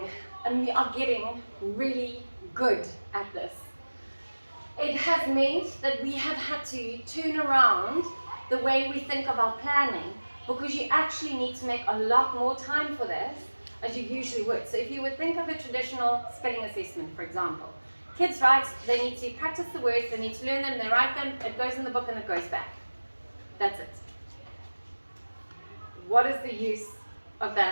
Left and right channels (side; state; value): both; inverted; correlation -1.00